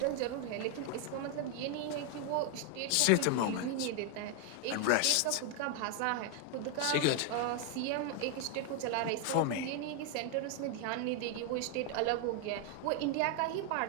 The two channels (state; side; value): different; both; correlation 0.01